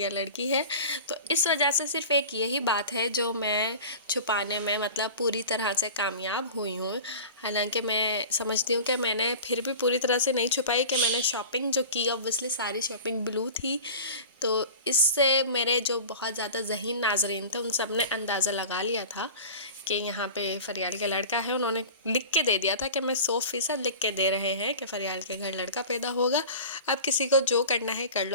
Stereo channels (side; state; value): both; inverted; correlation -0.36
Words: लड़की है। तो इस वजह से सिर्फ एक यही बात है जो मैं छुपाने में मतलब पूरी तरह से कामयाब हुई हूँ। हालांकि मैं समझती हूँ कि मैंने फिर भी पूरी तरह से नहीं छुपाई कि मैंने शॉपिंग जो की, ऑब्वियसली सारी शॉपिंग ब्लू थी। तो इससे मेरे जो बहुत ज़्यादा ज़हीन नाजरीन थे उन सब ने अंदाज़ा लगा लिया था कि यहाँ पे फरियाल का लड़का है। उन्होंने लिख के दे दिया था कि मैं 100% लिख के दे रहे हैं कि फरियाल के घर लड़का पैदा होगा, अब किसी को जो करना है कर